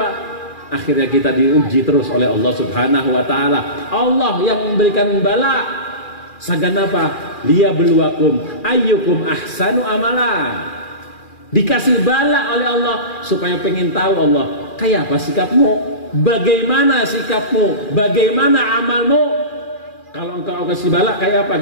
Akhirnya kita diuji terus oleh Allah Subhanahu wa ta'ala. Allah yang memberikan bala. Sagan apa? Liyabluwakum ayyukum ahsanu amala. Dikasih bala oleh Allah supaya pengen tahu Allah, kayak apa sikapmu? Bagaimana sikapmu? Bagaimana amalmu? Kalau engkau kasih bala, kayak apa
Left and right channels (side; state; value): right; late; 2.4 ms